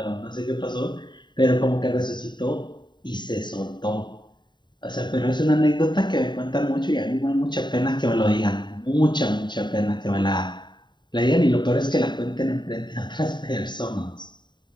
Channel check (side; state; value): right; late; 0.22 ms